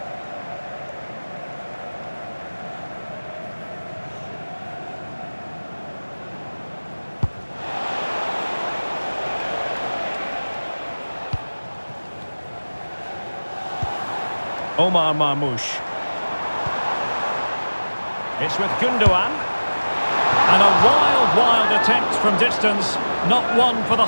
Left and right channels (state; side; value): inverted; both; correlation -1.00